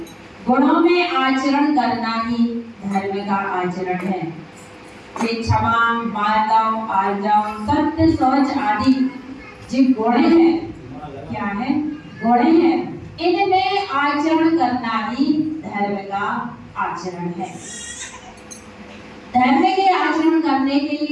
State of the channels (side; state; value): both; identical; correlation 1.00